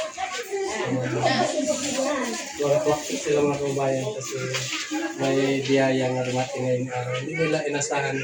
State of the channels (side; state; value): both; identical; correlation 1.00